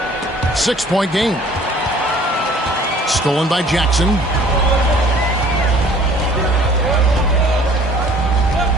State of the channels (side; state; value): both; normal; correlation 0.53